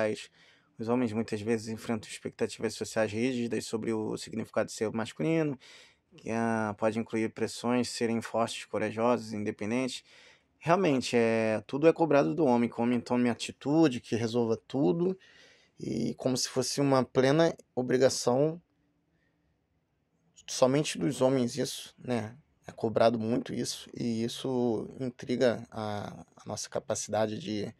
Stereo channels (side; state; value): both; identical; correlation 1.00